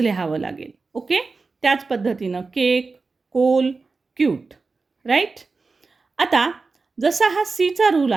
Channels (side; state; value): left; quieter; 4.1 dB